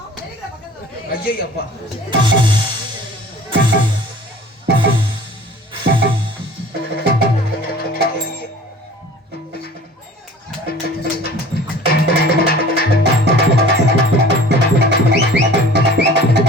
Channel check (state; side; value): normal; both; correlation 0.46